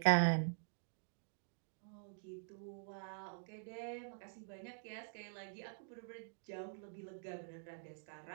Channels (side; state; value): left; silent; digital silence